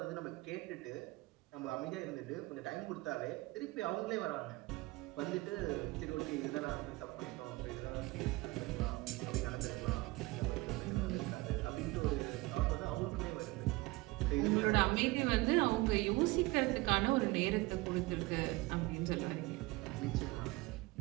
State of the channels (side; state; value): left; quieter; 22.0 dB